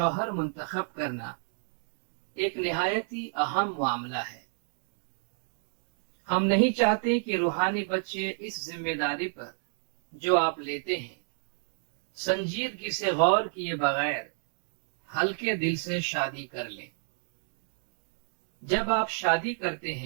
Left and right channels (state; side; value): silent; left; 58 dB below the other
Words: منتخب کرنا ایک نہایت ہی اہم معاملہ ہے۔ ہم نہیں چاہتے کہ روحانی بچے اس ذمہ داری پر جو آپ لیتے ہیں سنجیدگی سے غور کیے بغیر ہلکے دل سے شادی کر لیں۔ جب آپ شادی کرتے